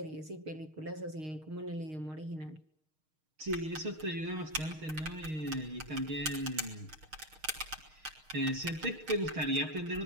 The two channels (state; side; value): late; left; 6.5 ms